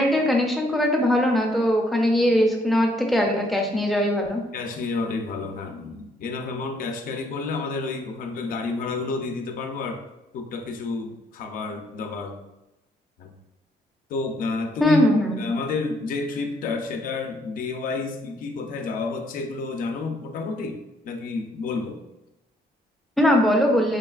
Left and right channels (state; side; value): normal; both; correlation 0.69